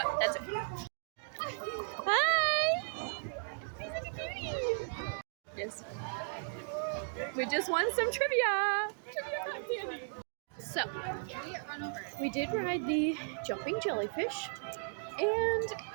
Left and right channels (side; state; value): left; silent; digital silence